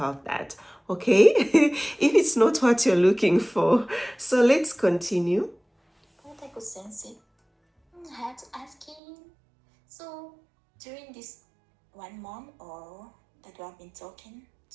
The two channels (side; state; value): left; drops out; at 9.0 s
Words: that, okay? If it's not what you're looking for. So let's continue. But I could sense it. I had to ask him. So during this 1 month or that we have been talking